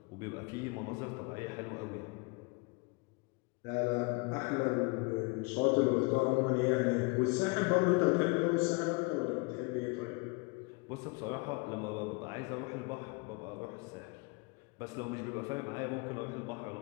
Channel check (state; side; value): quieter; right; 29.3 dB